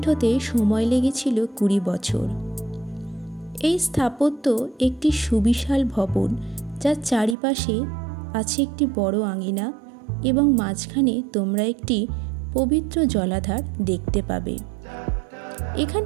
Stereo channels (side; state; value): left; drops out; at 7.4 s